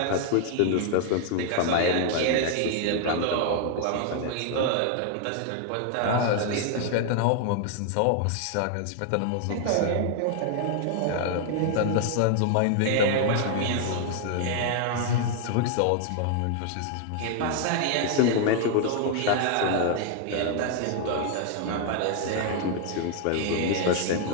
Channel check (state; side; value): different; both; correlation 0.00